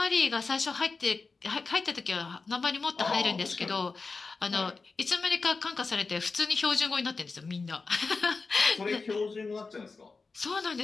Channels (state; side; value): quieter; right; 4.2 dB